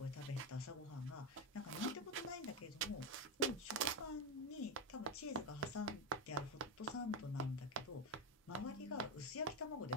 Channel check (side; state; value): both; normal; correlation 0.10